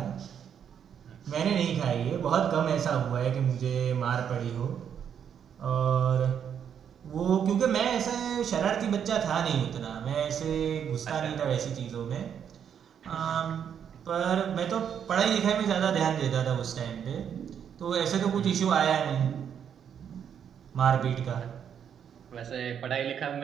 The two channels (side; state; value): left; quieter; 8.3 dB